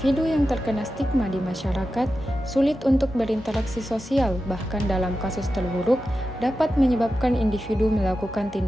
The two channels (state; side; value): normal; both; correlation 0.92